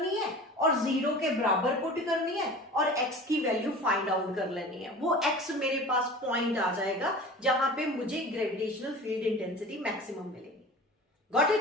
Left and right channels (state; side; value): normal; both; correlation 0.38